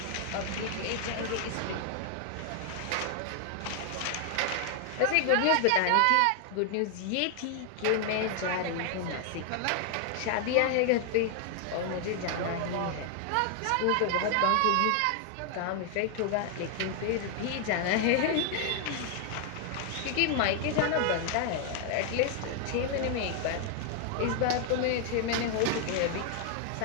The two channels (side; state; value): both; different; correlation 0.00